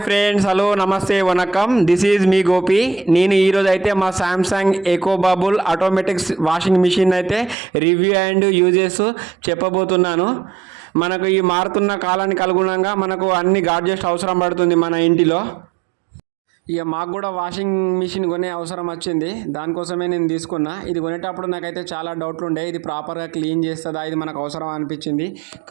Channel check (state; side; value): drops out; left; at 7.6 s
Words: friends, hello, నమస్తే, వనకం. This is మీ గోపి. నేను ఈరోజు అయితే మా Samsung eco bubble automatic washing machine అయితే రివ్యూ అండ్ యూజెస్ చెప్పబోతున్నాను. మనకు ఈ మారుతున్న కాలానికి అనుగుణంగా మనకు అన్ని గాడ్జెట్స్ అవసరం పడుతుంది మన ఇంటిలో. ఇక మాకు కూడా వాషింగ్ మిషన్ కొనే అవసరం వచ్చింది. దానికోసమే నేను తీసుకున్నా. ఇది కొనేటప్పుడు నాకైతే చాలా డౌట్లు ఉండే, ఇది ప్రాపర్గా క్లీన్ చేస్తుందా, ఇది మనకు అవసరం అనిపించింది.